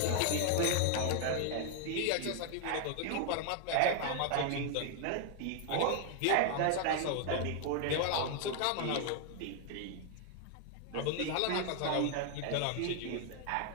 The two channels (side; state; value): both; different; correlation 0.00